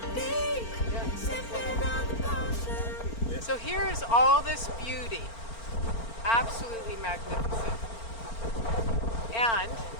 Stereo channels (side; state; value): right; late; 4.4 ms